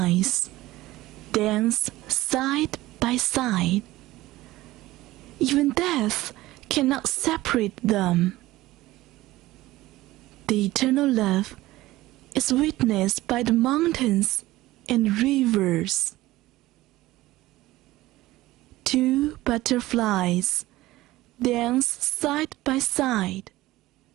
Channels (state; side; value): quieter; left; 17.5 dB